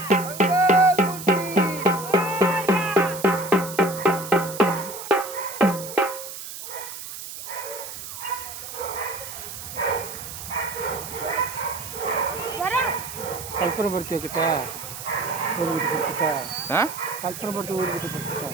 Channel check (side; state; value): right; noise; hiss, 10 dB below the sound